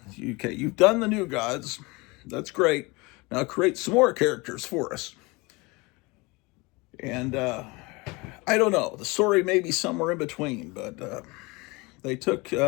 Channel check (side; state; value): right; quieter; 25.2 dB